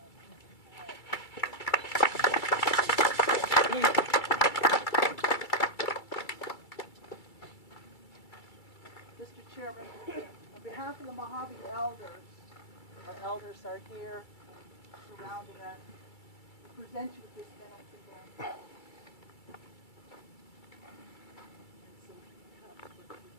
Mr. Chairman, on behalf of the Mojave elders, our elders are here surrounding us. We present you with this benefit again. And some cups for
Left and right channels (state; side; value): late; right; 2.3 ms